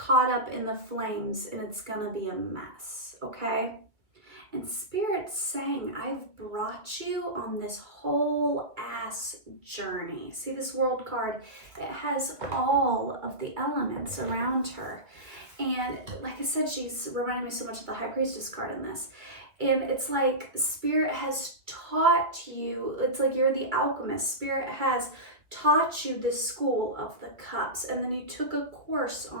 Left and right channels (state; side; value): late; left; 2.1 ms